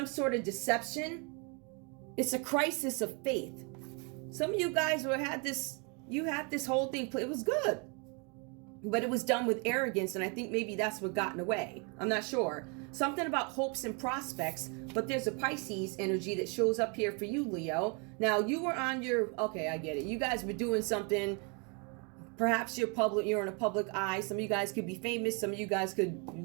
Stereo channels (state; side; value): quieter; left; 34.2 dB